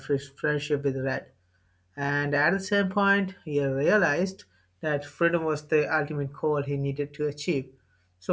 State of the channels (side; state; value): both; identical; correlation 1.00